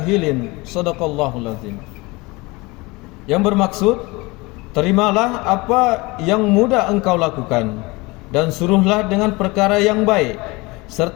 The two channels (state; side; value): quieter; right; 24.1 dB